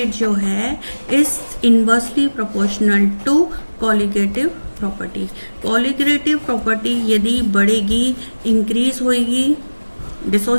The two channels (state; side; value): inverted; both; correlation -1.00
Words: जो है is inversely proportional to colligative property. Colligative property यदि बढ़ेगी, इंक्रीज होगी